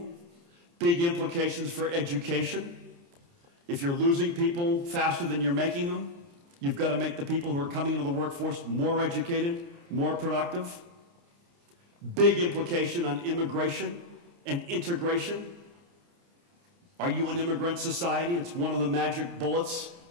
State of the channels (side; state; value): left; late; 29 ms